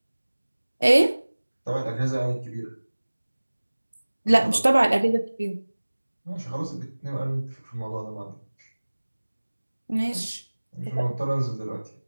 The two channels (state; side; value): inverted; both; correlation -1.00